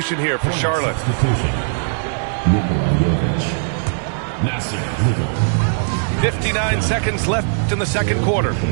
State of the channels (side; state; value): left; silent; digital silence